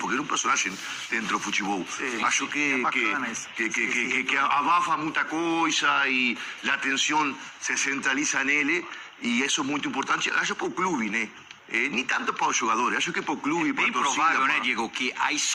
ele é um personagem dentro do futebol. Sim, Acho que, é bacana isso. que abafa muita coisa e a atenção se centraliza nele e isso é muito importante. Acho para o clube, né? Nem tanto para os jogadores, acho que para o clube, para Bem a torcida. provável, né, para... Diego, que a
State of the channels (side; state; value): both; identical; correlation 1.00